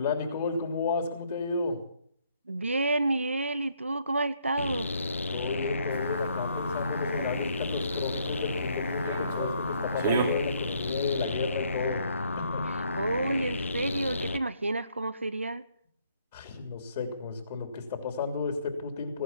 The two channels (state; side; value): inverted; both; correlation -0.68